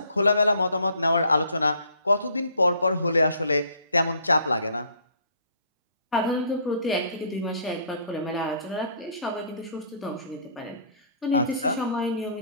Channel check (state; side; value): inverted; both; correlation -0.57